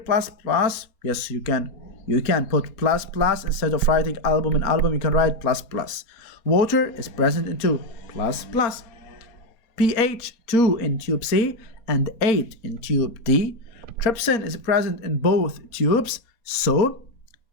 plus? Yes, you can. You can put plus plus instead of writing albumin, you can write plus plus. Water is present in 2, plus plus. pH 2 in tube C and 8 in tube D. Trypsin is present in both tubes, so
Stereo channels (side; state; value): right; late; 4.2 ms